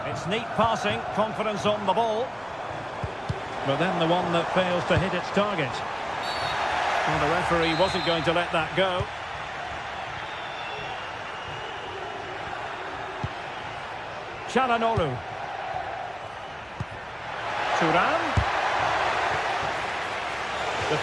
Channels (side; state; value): left; noise; hum, 30 dB below the sound